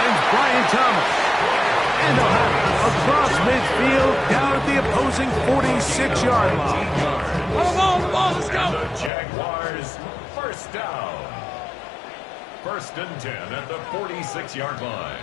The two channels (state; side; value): drops out; right; at 9.1 s